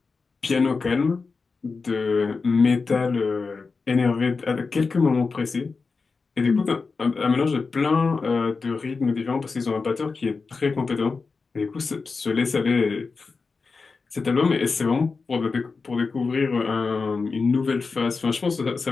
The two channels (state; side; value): quieter; right; 4.5 dB